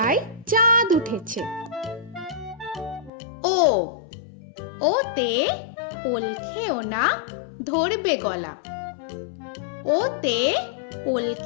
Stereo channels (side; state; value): right; drops out; at 3.1 s